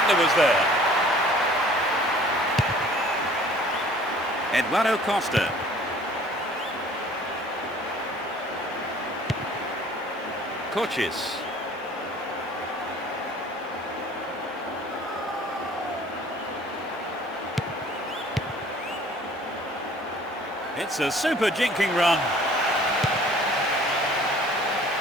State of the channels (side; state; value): both; normal; correlation 0.52